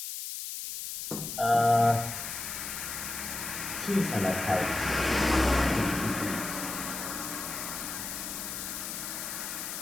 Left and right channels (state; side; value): noise; left; hiss, 6 dB below the sound